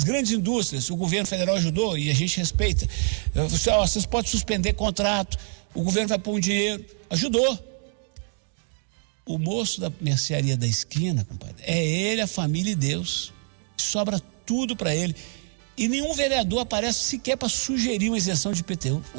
grandes indústrias, o governo federal ajudou e a gente respeita. Vocês podem suspender contrato, o governo vai pôr um dinheiro. Ajudou. O moço da mercearia da esquina, compadre, é ele, a família e Deus. Sobra tudo para ele. E nenhum vereador aparece sequer para sugerir uma isenção de IPTU.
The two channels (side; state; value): left; silent; 57 dB below the other